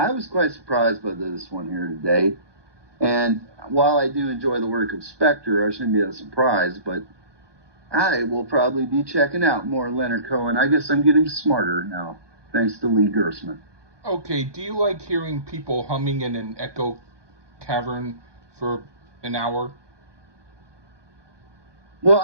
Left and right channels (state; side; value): late; left; 1.2 ms